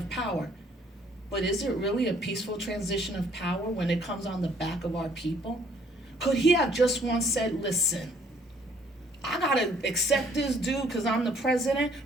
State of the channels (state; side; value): normal; both; correlation 0.62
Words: power. But is it really a peaceful transition of power when it comes on the back of our people? Could he have just once said, listen, I gotta accept this dude because I'm the president,